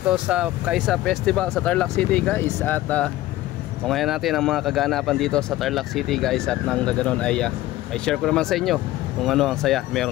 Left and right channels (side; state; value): right; quieter; 16.0 dB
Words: sa Kaisa Festival sa Tarlac City, guys. At tungayan natin ang mga kaganapan dito sa Tarlac City, guys. At nang ganoon ay may share ko naman sa inyo kung ano ang saya